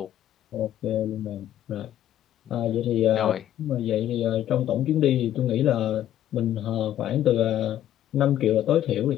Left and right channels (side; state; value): right; quieter; 11.9 dB